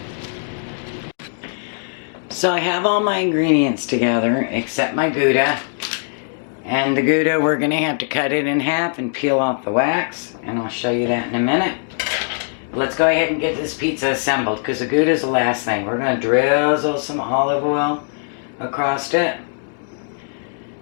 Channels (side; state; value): right; silent; digital silence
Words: So I have all my ingredients together except my Gouda. And the Gouda, we're going to have to cut it in half and peel off the wax. And I'll show you that in a minute. Let's go ahead and get this pizza assembled because the Gouda is the last thing. We're going to drizzle some olive oil across it.